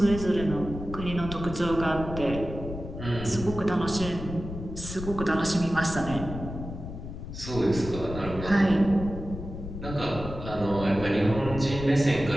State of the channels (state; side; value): noise; left; rumble, 9 dB below the sound